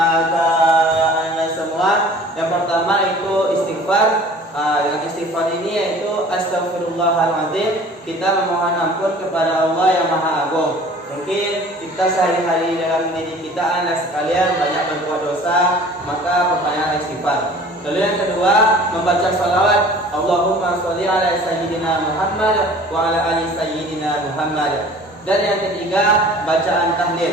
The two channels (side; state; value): both; normal; correlation 0.47